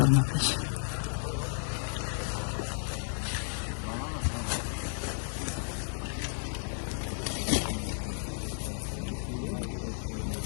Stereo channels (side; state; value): right; silent; digital silence